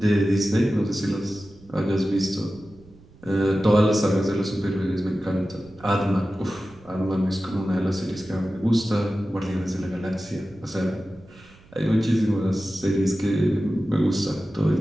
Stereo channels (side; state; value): right; noise; rumble, 25 dB below the sound